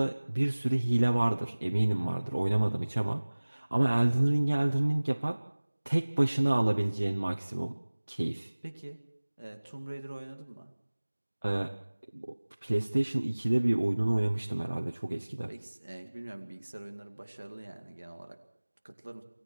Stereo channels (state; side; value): inverted; both; correlation -1.00